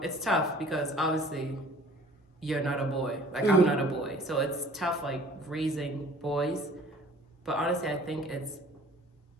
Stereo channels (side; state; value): both; normal; correlation 0.50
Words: it's tough because obviously you're not a boy. Mm-hmm. I'm not a boy, so it's tough raising boys. But honestly, I think I